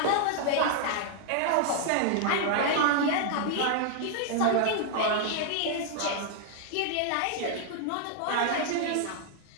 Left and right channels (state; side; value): different; both; correlation 0.00